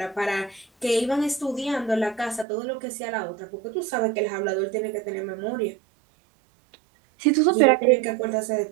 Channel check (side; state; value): left; drops out; at 2.5 s